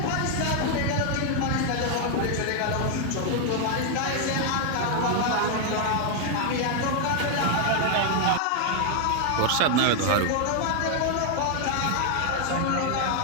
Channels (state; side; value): different; both; correlation 0.00